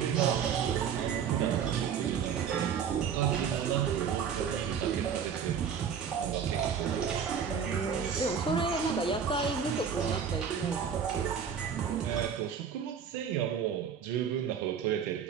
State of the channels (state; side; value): quieter; left; 7.4 dB